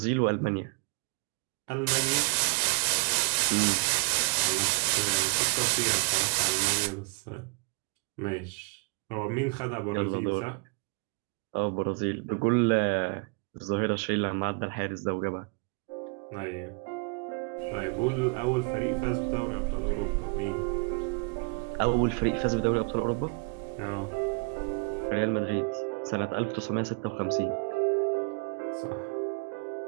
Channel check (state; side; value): quieter; left; 34.8 dB